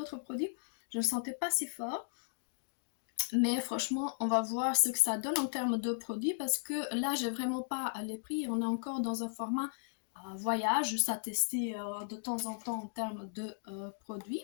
produit, je ne le sentais pas si fort. Mais franchement, on va voir ce que ça donne en termes de produits parce que là, j'ai vraiment pas les prix. On est encore dans un format voyage, juste à tester de temps en temps en termes de produits.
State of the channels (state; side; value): silent; right; digital silence